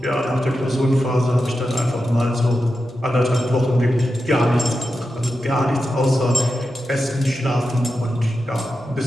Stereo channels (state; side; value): normal; both; correlation 0.90